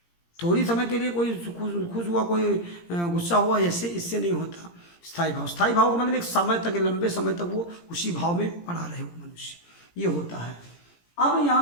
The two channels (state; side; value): late; right; 17 ms